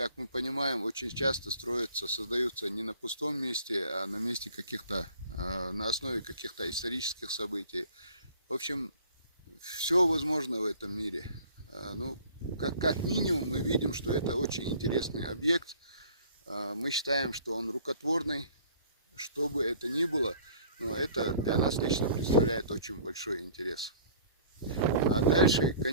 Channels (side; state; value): both; inverted; correlation -0.50